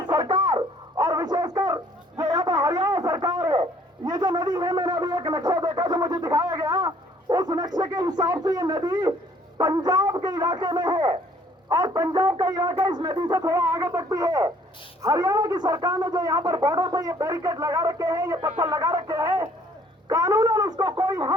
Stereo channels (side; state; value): both; normal; correlation 0.60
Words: सरकार और विशेषकर जो यहाँ पर हरियाणा सरकार है, ये जो नदी है, मैंने अभी एक नक्शा देखा जो मुझे दिखाया गया, उस नक्शे के हिसाब से ये नदी पंजाब के इलाके में है और पंजाब का इलाका इस नदी से थोड़ा आगे तक भी है। हरियाणा की सरकार ने जो यहाँ पर बॉर्डर पे ये बैरिकेड लगा रखे हैं, ये पत्थर लगा रखे हैं, कानूनन उसको कोई